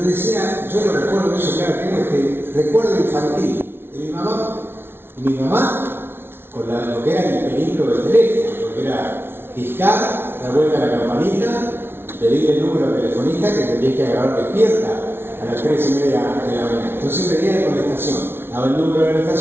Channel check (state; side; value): late; left; 0.11 ms